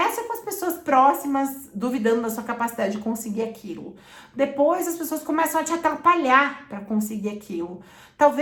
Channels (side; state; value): both; identical; correlation 1.00